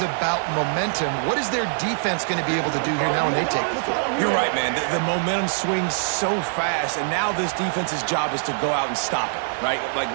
momentum. What is their defense going to be able to do here now when they take the field? You're right, man. The momentum swings so fast, and now this defense's job is to go out and stop it, right? Like,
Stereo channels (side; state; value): left; silent; digital silence